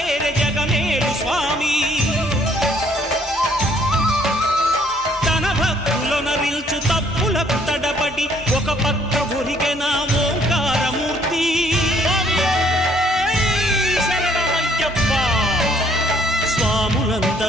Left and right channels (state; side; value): normal; both; correlation 0.64